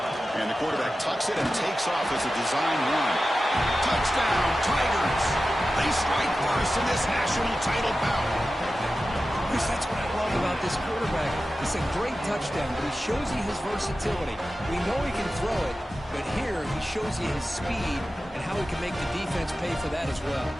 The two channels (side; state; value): both; normal; correlation 0.94